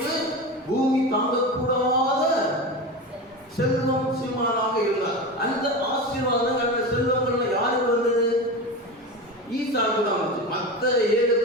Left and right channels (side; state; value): both; normal; correlation 0.25